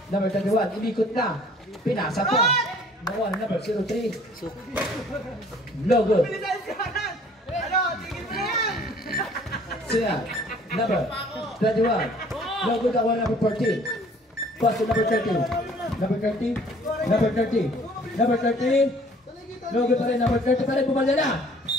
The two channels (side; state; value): both; normal; correlation 0.55